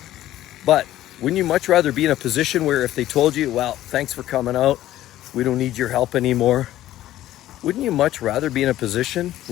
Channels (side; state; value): right; quieter; 14.0 dB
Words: But wouldn't you much rather be in a position where if they told you, well, thanks for coming out, we don't need your help anymore. Wouldn't you much rather be in a position